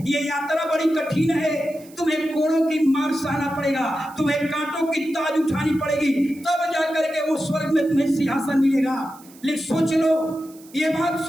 ये यात्रा बड़ी कठिन है, तुम्हें कोड़ों की मार सहना पड़ेगा, तुम्हें कांटों की ताज उठानी पड़ेगी, तब जाकर के वो स्वर्ग में तुम्हें सिंहासन मिलेगा। लेकिन सोच लो, ये बात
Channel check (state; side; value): noise; right; hiss, 24 dB below the sound